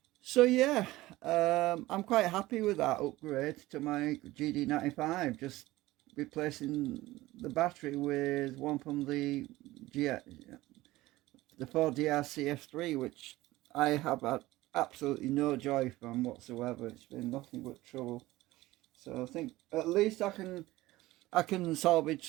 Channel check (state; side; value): quieter; left; 18.0 dB